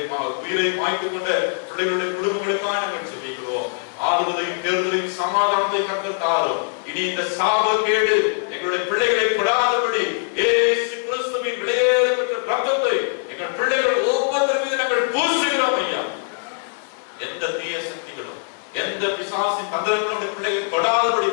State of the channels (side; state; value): right; silent; 60 dB below the other